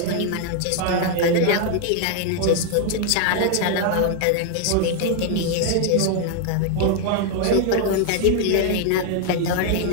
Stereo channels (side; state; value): both; different; correlation 0.00